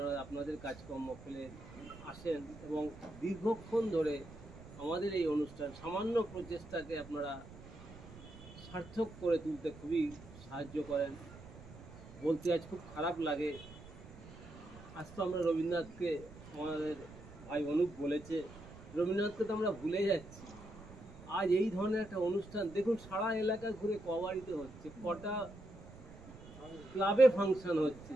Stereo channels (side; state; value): right; noise; rumble, 17 dB below the sound